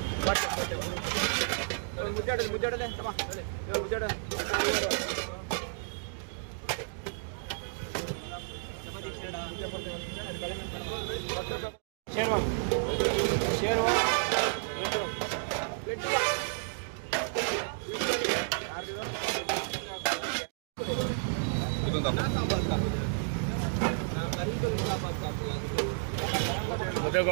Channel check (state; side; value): silent; left; digital silence